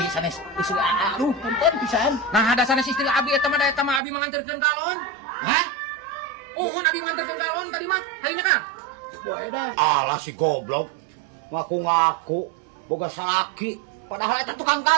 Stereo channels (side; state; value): left; drops out; at 4.0 s